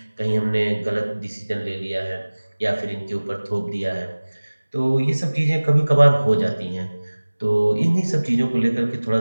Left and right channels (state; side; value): inverted; both; correlation -1.00